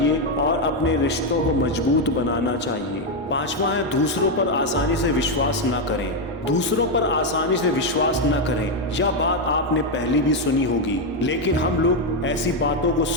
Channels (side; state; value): both; normal; correlation 0.04